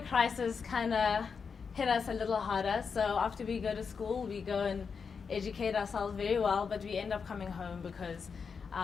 crisis kind of hit us a little harder. So after we go to school, we go and educate ourselves very well, but we end up coming home because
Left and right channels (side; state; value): right; quieter; 5.7 dB